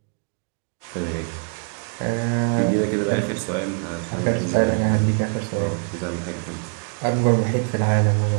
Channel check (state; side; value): quieter; left; 39.6 dB